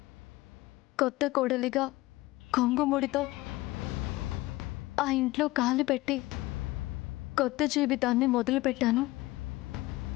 కొత్త కోడలిగా కొంగుముడితో ఆ ఇంట్లో కాలు పెట్టి కొత్త జీవితాన్ని మొదలుపెట్టాను.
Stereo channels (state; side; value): quieter; right; 19.3 dB